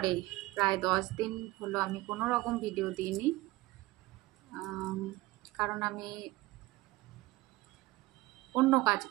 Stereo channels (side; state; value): left; quieter; 19.4 dB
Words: প্রায় 10 দিন হলো আমি কোনো রকম ভিডিও দিইনি। আম, কারণ আমি অন্য কাজ